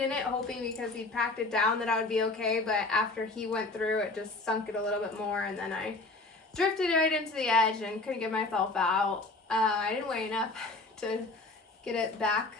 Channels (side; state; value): right; quieter; 3.1 dB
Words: it, hoping because he packed it down that I would be okay. But after he went through, it just sunk it a little bit more, and then I drifted right into the edge and couldn't get myself out. I didn't weigh enough to get it back